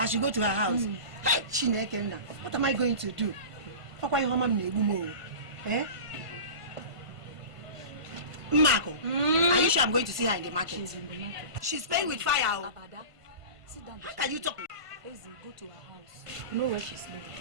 should go to her house. What am I going to do? Eh? Marco, are you sure I'm going to see her in the market? She's in the market. She's playing with fire. Abada, sit down. How can you talk? Easy, go to her house. You know where she's living.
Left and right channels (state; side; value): late; left; 1.5 ms